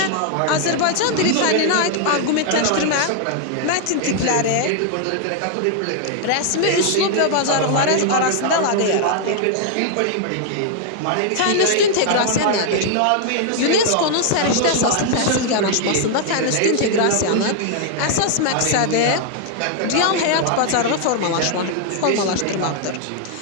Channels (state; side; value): different; both; correlation 0.00